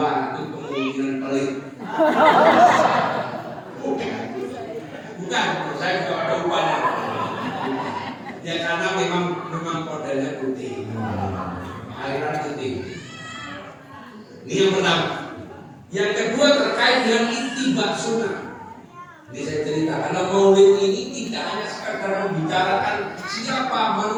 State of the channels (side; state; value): both; identical; correlation 1.00